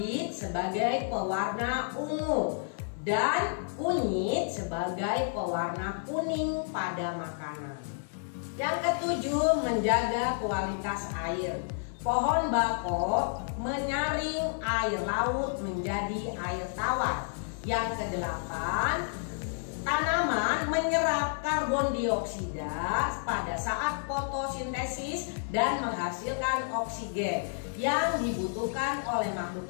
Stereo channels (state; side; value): silent; right; digital silence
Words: sebagai pewarna ungu, dan kunyit sebagai pewarna kuning pada makanan. Yang ketujuh, menjaga kualitas air. Pohon bako menyaring air laut menjadi air tawar. Yang kedelapan, tanaman menyerap karbon dioksida pada saat fotosintesis dan menghasilkan oksigen yang dibutuhkan oleh makhluk